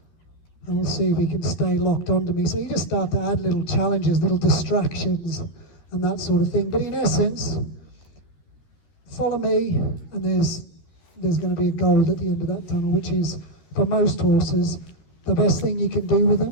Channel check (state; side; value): late; right; 13 ms